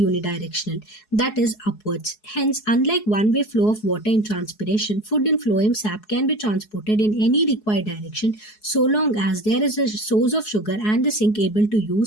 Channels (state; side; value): late; right; 4.7 ms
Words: unidirectional, that is upwards. Hence, unlike one-way flow of water in transpiration, food in phloem sap can be transported in any required direction so long as there is a source of sugar and the sink able to